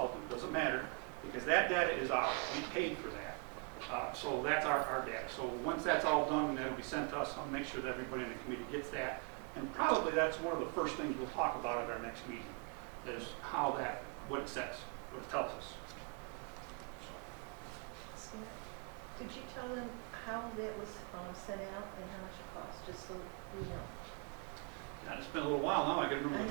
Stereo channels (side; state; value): left; quieter; 35.8 dB